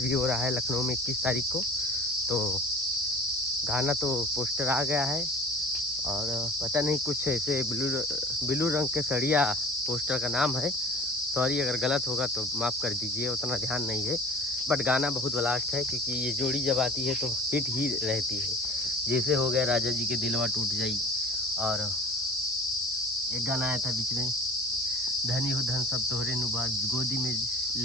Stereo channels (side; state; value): both; normal; correlation 0.43